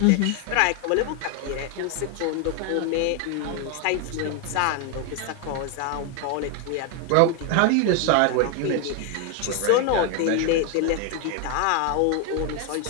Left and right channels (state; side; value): different; both; correlation 0.01